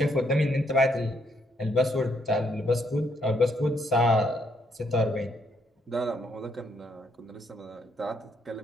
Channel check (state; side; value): normal; both; correlation 0.73